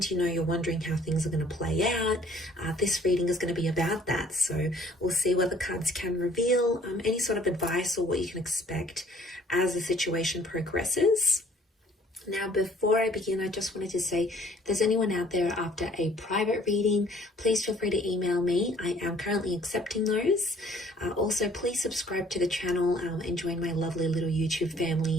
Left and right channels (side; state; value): both; normal; correlation 0.58